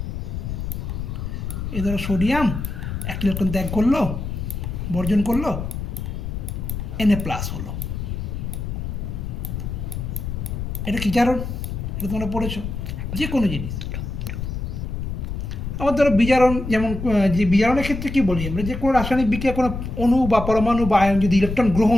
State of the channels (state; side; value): noise; left; rumble, 5 dB below the sound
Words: সোডিয়াম একটা ইলেকট্রন ত্যাগ করলো, বর্জন করলো, Na+ হলো। এটা কি জারণ? এটা তোমরা পড়েছো, যে কোনো জিনিস। আবার ধরো বিজারণ, যেমন যে বিজারণের ক্ষেত্রে কী বলি আমরা, যে কোনো রাসায়নিক বিক্রিয়া কোনো অণু বা পরমাণু বা আয়ন যদি ইলেকট্রন